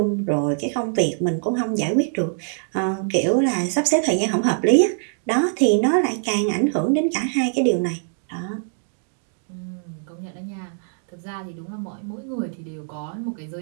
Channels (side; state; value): left; silent; digital silence